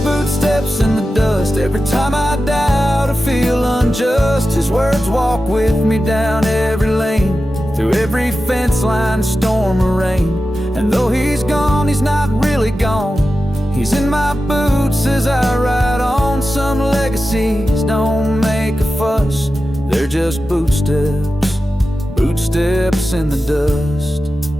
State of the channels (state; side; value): normal; both; correlation 0.93